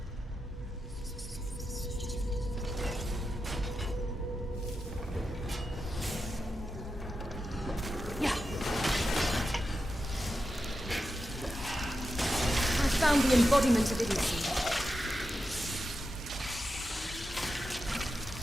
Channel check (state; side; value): normal; both; correlation 0.89